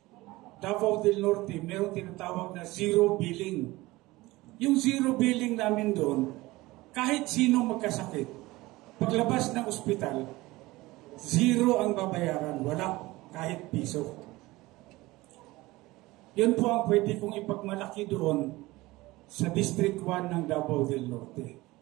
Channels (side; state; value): left; quieter; 19.9 dB